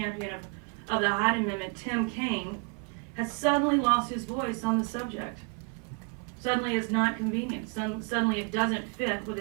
of the Hyde Amendment, Tim Kaine, has suddenly lost his voice on the subject. Suddenly it's not convenient. Suddenly it doesn't fit with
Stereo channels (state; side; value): quieter; left; 36.0 dB